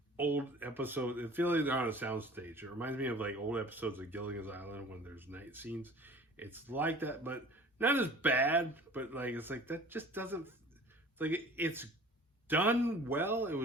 old episodes. It feels like they're on a soundstage. It reminds me of like old episodes of Gilligan's Island when there's night scenes. It's like that, but not as bad. But like it's like that just doesn't. It's like it's done well. It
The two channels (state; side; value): normal; both; correlation 0.45